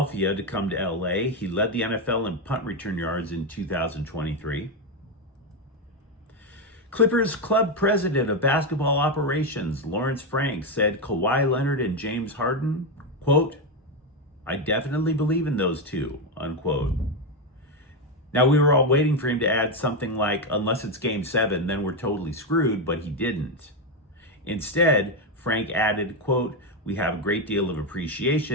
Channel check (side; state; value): both; normal; correlation 0.08